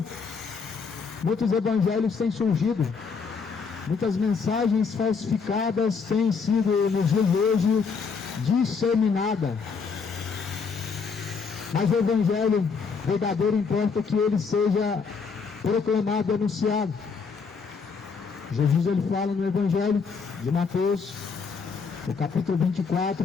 muitos evangelhos têm surgido, muitas mensagens falsificadas têm sido nos dias de hoje disseminadas. Mas o Evangelho verdadeiro importa que ele seja proclamado e anunciado. Jesus, ele fala no Evangelho de Mateus, no capítulo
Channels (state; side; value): quieter; right; 5.3 dB